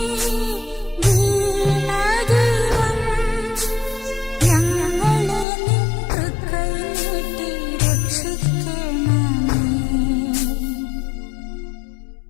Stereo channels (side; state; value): right; drops out; at 5.5 s